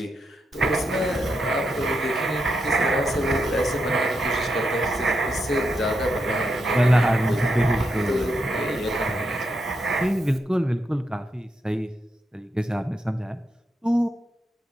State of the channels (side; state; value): both; normal; correlation 0.83